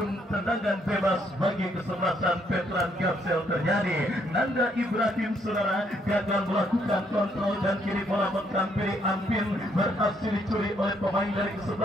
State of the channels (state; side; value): normal; both; correlation 0.71